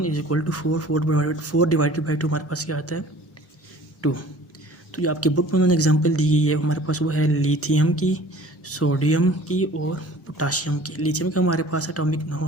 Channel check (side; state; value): both; normal; correlation 0.48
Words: = 4, 4 डिवाइडेड बाई 2 हमारे पास क्या आता है 2। तो जो आपकी बुक में उन्होंने एग्जांपल दी गई है हमारे पास वो है लिथियम की, सोडियम की और पोटाशियम की। लिथियम का हमारे पास एटॉमिक